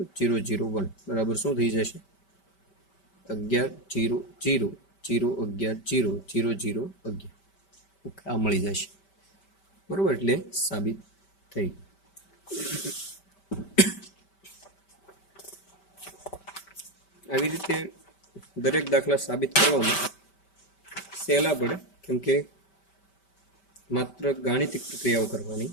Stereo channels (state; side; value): late; right; 5.1 ms